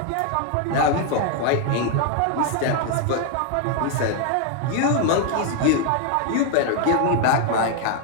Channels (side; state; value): both; different; correlation 0.00